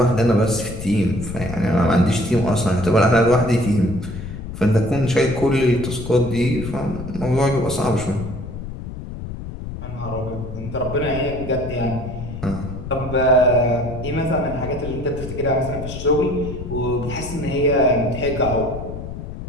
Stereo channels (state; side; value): noise; left; rumble, 9 dB below the sound